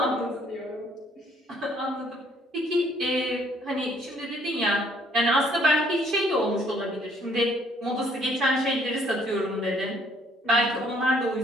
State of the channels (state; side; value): normal; both; correlation 0.64